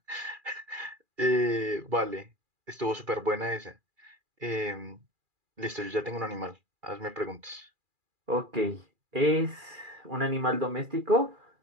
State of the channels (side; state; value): left; late; 2.4 ms